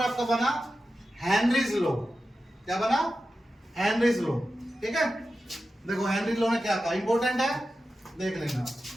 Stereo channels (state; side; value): normal; both; correlation 0.92